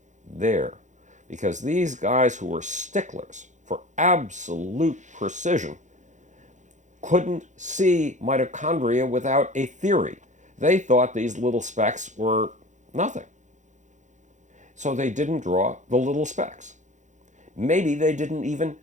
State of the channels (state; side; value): late; left; 0.35 ms